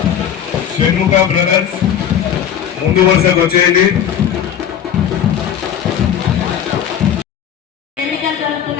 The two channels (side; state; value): right; quieter; 9.1 dB